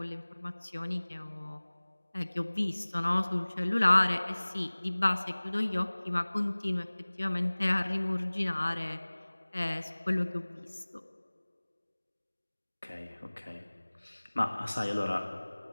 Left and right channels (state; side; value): inverted; both; correlation -1.00